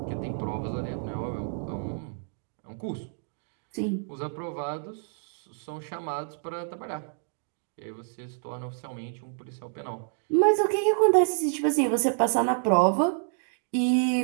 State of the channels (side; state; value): left; silent; digital silence